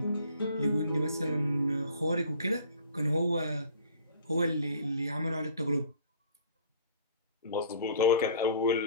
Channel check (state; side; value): inverted; both; correlation -0.50